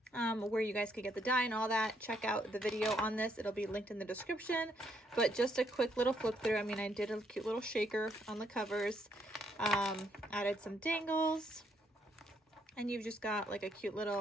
Where you guys could get the die and all that. Check out the video on this. It'll be linked in the description. But just a quick little flip through. I mean, I did a cute little shaker on the covers. Added some dangles. And you've just got like a cute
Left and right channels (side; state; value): both; normal; correlation 0.73